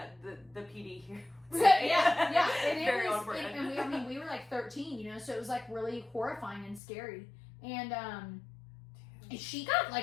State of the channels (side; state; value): right; drops out; at 6.8 s